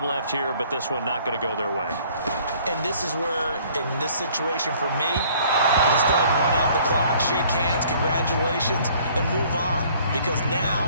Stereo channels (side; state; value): both; inverted; correlation -0.57